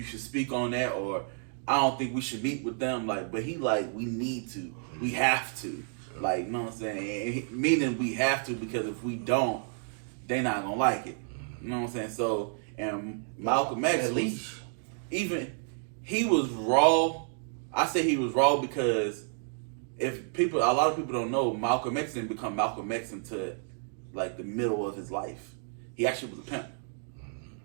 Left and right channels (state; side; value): silent; left; 57 dB below the other